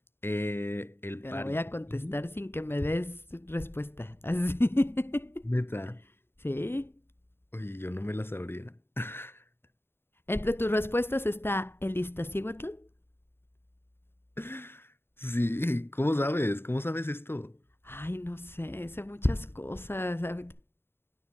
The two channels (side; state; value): right; late; 0.11 ms